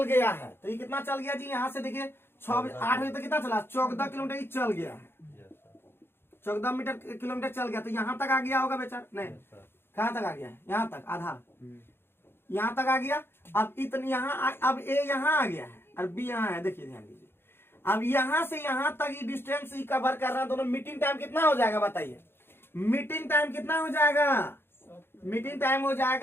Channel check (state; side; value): late; right; 0.11 ms